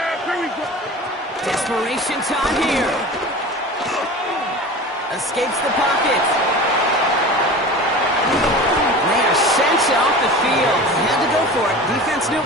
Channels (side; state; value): both; normal; correlation 0.35